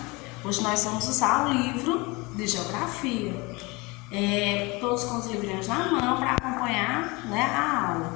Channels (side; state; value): right; quieter; 25.4 dB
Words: Hoje nós vamos usar o livro de Geografia. Todos com os livrinhos na mão para acompanhar, a